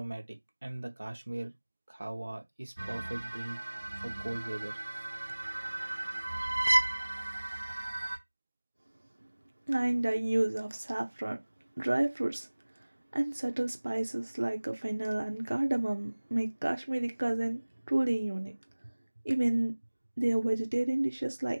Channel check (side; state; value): both; inverted; correlation -1.00